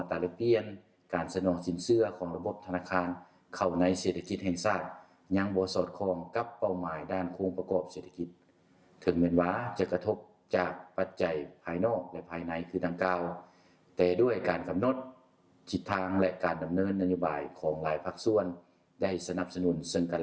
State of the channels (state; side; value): identical; both; correlation 1.00